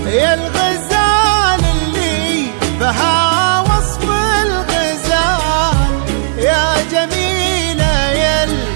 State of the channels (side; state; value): left; silent; digital silence